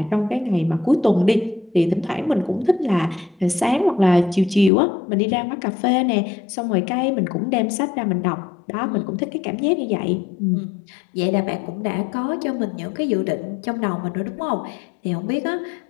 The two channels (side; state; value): right; drops out; at 4.7 s